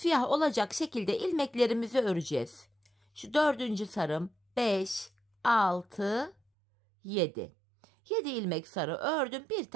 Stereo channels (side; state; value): left; drops out; at 6.4 s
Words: olacak şekilde ilmeklerimizi öreceğiz. Şu 4. sarım 5, 6, 7. 7 ilmek sarı ördüm, bir